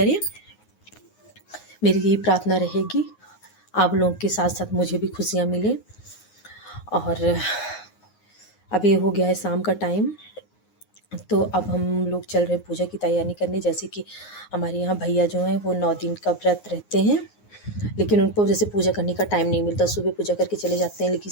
मेरी यही प्रार्थना रहेगी, आप लोगों के साथ साथ मुझे भी खुशियाँ मिले। और अभी हो गया है शाम का टाइम, तो अब हम लोग चल रहे हैं पूजा की तैयारी करने। जैसे कि हमारे यहाँ भैया जो हैं वो 9 दिन का व्रत रहते हैं, लेकिन उनको जैसे पूजा करने का टाइम नहीं मिलता। सुबह पूजा करके चले जाते हैं, लेकिन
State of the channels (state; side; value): late; right; 9.5 ms